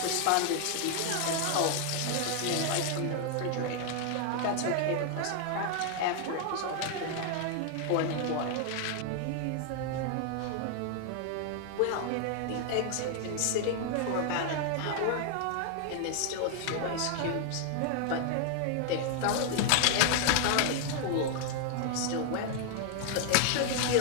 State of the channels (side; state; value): both; different; correlation 0.00